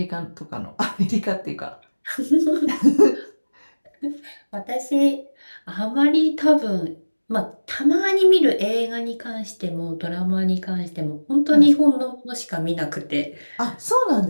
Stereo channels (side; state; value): both; inverted; correlation -1.00